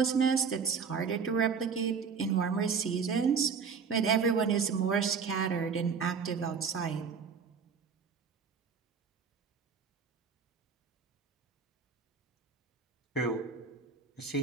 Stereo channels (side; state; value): left; quieter; 5.9 dB